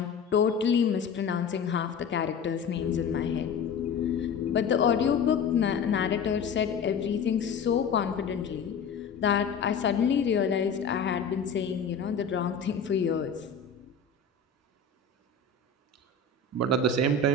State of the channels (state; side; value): quieter; right; 5.3 dB